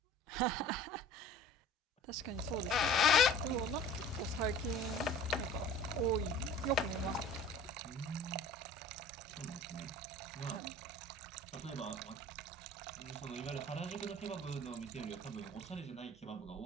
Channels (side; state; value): both; normal; correlation 0.44